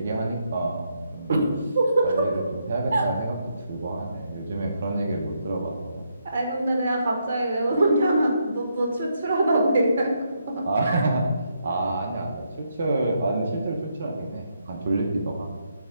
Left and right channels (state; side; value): inverted; both; correlation -0.78